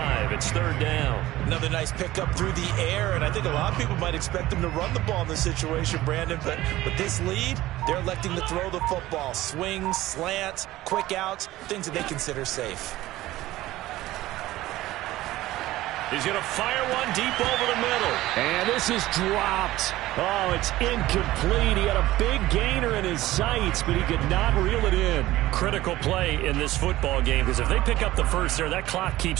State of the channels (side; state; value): left; quieter; 16.4 dB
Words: It's 3rd down. Another nice pickup through the air, and I think a lot of people might expect him to run the ball in this situation, Brandon, but with this lead, they're electing to throw the football. Swings, slants, quick outs, things that they consider safe. He's going to fire one deep over the middle. And this is dropped. Oh, it's incomplete. He had a big gainer in his sights, but he could not reel it in. Critical play in this football game, because if they pick up the first there, that clock